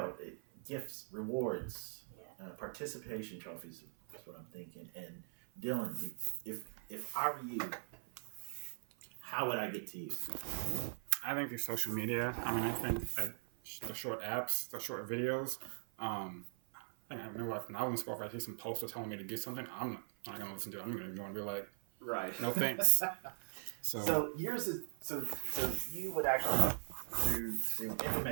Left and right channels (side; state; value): left; silent; 51 dB below the other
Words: Gifts, rewards, participation trophies. That's what I'm thinking. And Dylan, if I were you, how would I get to you? I think through social media. I mean, I think like the short apps, the short videos. I think I remember like when I was in school, if I see some poster telling me to do something, I'm not gonna listen to it. I'm gonna go and be like, Right. no thanks. So So here's so you would actually through